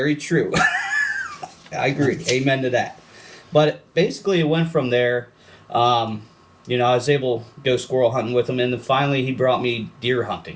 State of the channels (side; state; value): both; identical; correlation 1.00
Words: true. I agree. Amen to that. But basically, it went from there. I was able to go squirrel hunting with him, and then finally he brought me deer